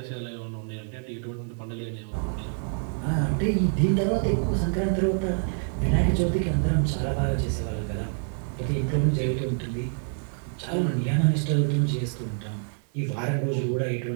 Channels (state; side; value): silent; left; 55 dB below the other